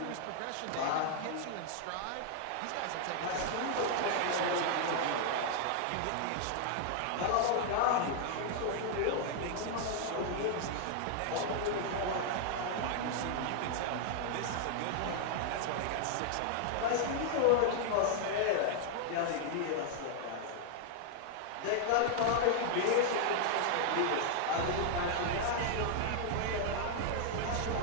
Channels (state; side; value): different; both; correlation 0.00